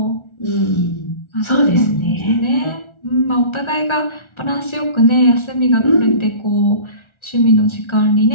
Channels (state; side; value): late; right; 1.4 ms